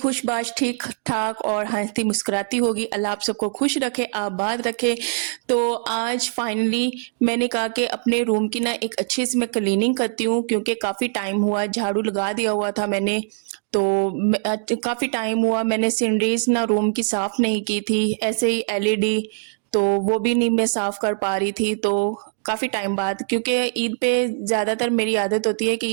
ठीक ठाक और हंसती मुस्कुराती होगी। अल्लाह आप सबको खुश रखे, आबाद रखे। तो आज फाइनली मैंने कहा कि अपने रूम की ना एक अच्छे से मैं क्लीनिंग करती हूँ, क्योंकि काफ़ी टाइम हुआ, झाड़ू लगा दिया हुआ था मैंने। तो काफ़ी टाइम हुआ मैंने सीनरीज ना रूम की साफ नहीं की थी, ऐसे ही एलईडी तो वो भी नहीं मैं साफ कर पा रही थी। तो काफ़ी टाइम बाद, क्योंकि ईद पे ज़्यादातर मेरी आदत होती है कि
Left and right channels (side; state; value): left; silent; digital silence